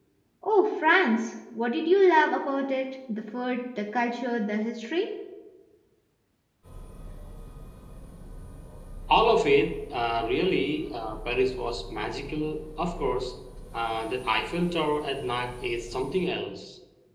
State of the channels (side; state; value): both; identical; correlation 1.00